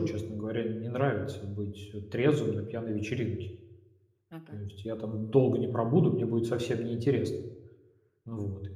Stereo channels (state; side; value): identical; both; correlation 1.00